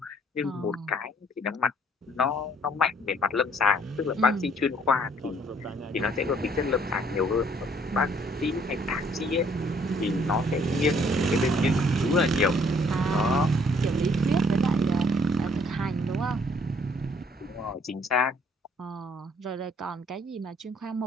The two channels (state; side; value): normal; both; correlation 0.63